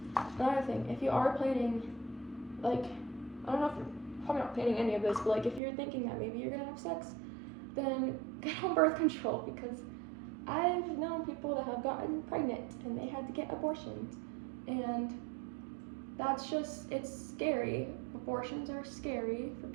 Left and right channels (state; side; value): drops out; left; at 5.6 s